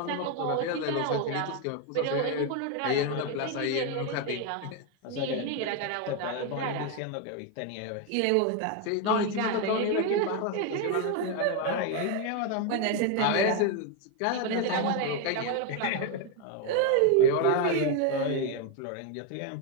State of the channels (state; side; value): different; both; correlation 0.01